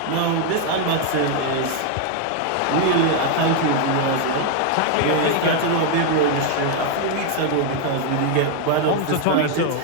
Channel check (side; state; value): both; different; correlation 0.00